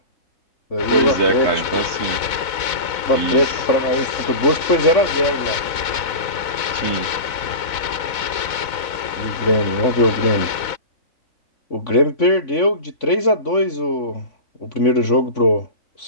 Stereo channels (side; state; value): right; late; 4.0 ms